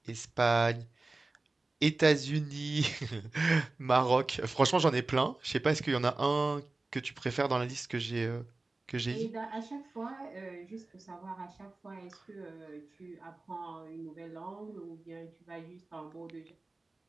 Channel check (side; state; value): left; quieter; 3.2 dB